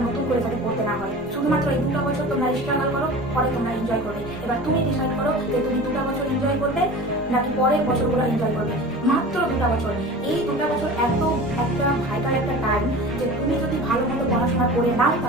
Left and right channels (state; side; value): normal; both; correlation 0.36